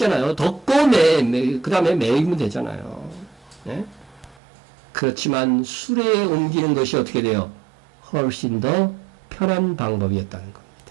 덮고 그 다음에 매이면 되잖아요. 그렇지만 수레에 옮기는 것이 어떻게 돼요? 훨씬 더 편한 방법이었다는 겁니다.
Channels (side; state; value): left; drops out; at 4.4 s